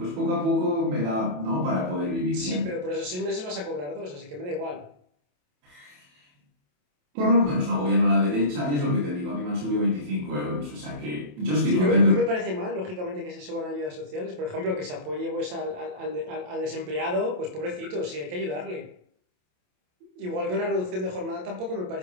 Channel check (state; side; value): late; left; 27 ms